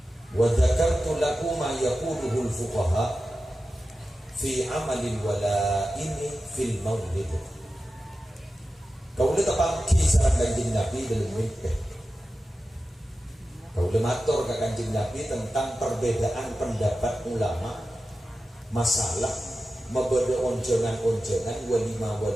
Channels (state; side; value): normal; both; correlation 0.93